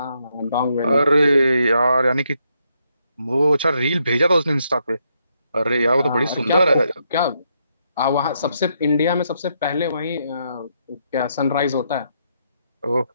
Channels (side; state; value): both; inverted; correlation -0.77